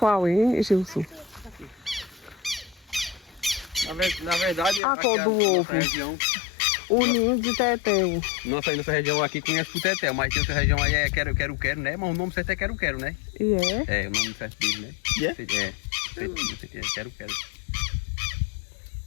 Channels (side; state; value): right; drops out; at 4.8 s